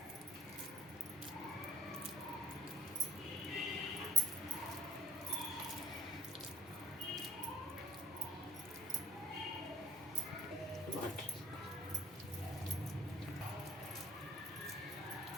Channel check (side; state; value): both; normal; correlation 0.48